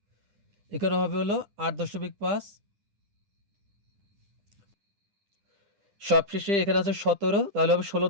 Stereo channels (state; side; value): late; left; 10 ms